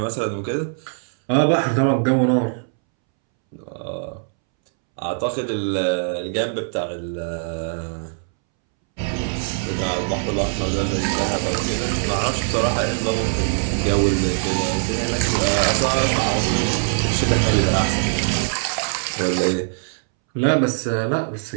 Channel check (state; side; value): silent; left; 64 dB below the other